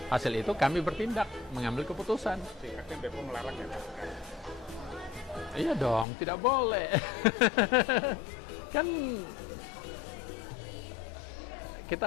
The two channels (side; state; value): right; drops out; at 6.1 s